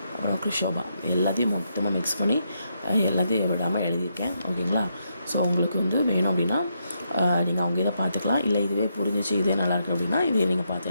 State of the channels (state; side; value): inverted; both; correlation -0.79